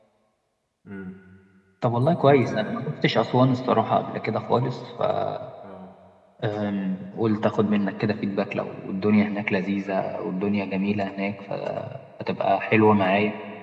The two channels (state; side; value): identical; both; correlation 1.00